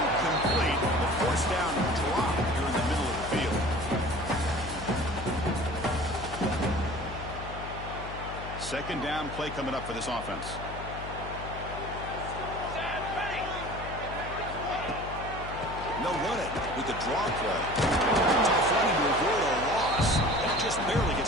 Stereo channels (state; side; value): noise; left; hum, 10 dB below the sound